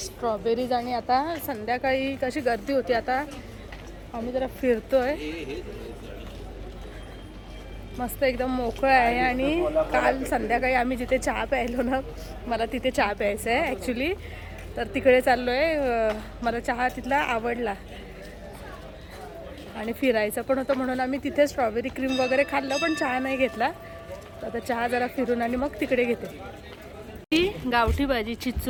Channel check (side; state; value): both; identical; correlation 1.00